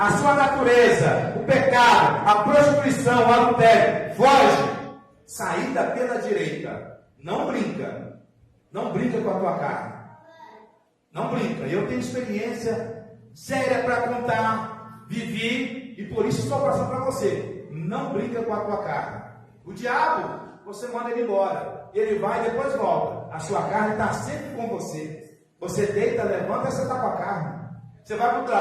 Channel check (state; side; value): identical; both; correlation 1.00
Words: sua natureza, o pecado, a prostituição, o adultério, foge. Saída pela direita. Não brinca. Não brinca com a tua carne. Não brinca. Eu tenho experiência séria para contar. Vivi e por isso estou passando para você. Não brinca com a tua carne. O diabo, você manda ele embora. Ele vai e depois volta. A sua carne está sempre com você. Você deita, levanta e você está com a carne. Você vai para o